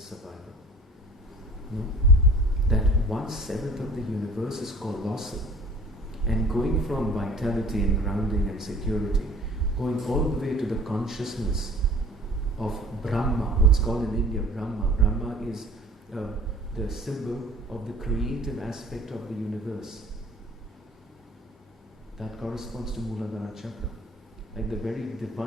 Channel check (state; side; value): normal; both; correlation 0.48